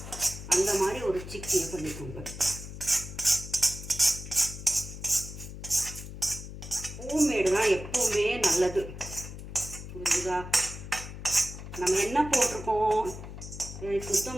அந்த மாதிரி ஒரு சிக்கி பண்ணிக்கோங்க. ஹோம்மேடு தான் எப்போவுமே நல்லது. புரியுதா? நம்ம என்ன போட்டிருக்கோம்,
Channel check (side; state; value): left; noise; hum, 11 dB below the sound